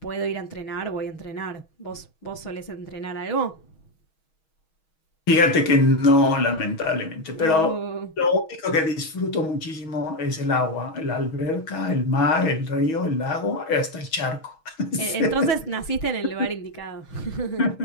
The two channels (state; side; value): late; right; 6.3 ms